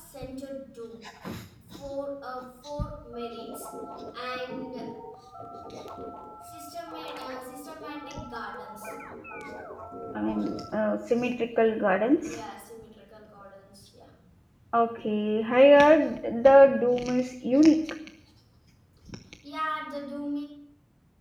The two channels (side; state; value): both; identical; correlation 1.00